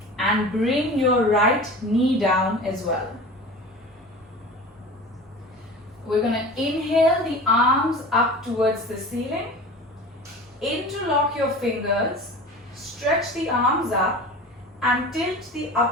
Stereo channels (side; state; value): both; normal; correlation 0.36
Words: and bring your right knee down as well. We're going to inhale the arms up towards the ceiling. Interlock your fingers, stretch the arms up and tilt the